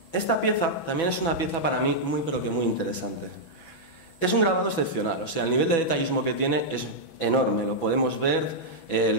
esta pieza también es una pieza para mí muy pero que muy interesante. Es un grabado excepcional, o sea, el nivel de detallismo que tiene es enorme, lo podemos ver,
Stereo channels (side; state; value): right; late; 6.1 ms